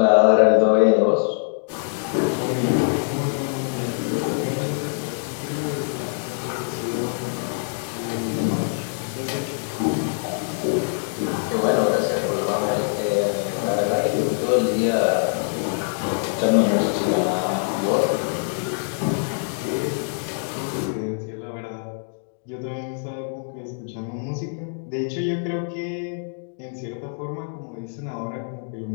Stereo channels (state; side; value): silent; right; digital silence